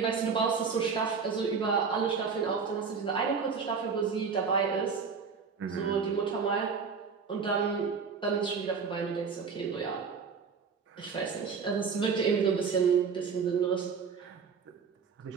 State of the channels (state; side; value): quieter; left; 5.7 dB